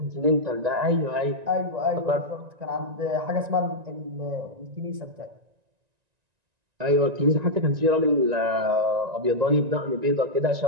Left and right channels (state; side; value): late; left; 1.9 ms